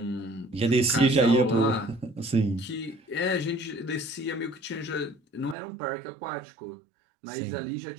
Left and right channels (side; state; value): left; drops out; at 5.6 s